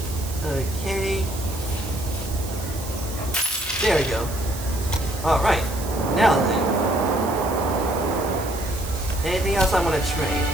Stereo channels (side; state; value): right; noise; hiss, 13 dB below the sound